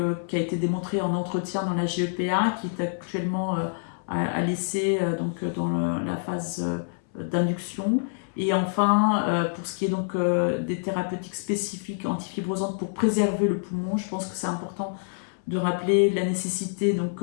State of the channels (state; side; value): silent; right; 61 dB below the other